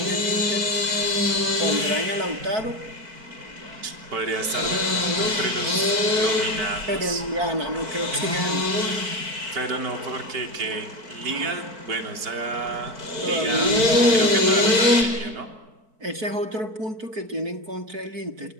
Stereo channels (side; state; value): left; late; 4.6 ms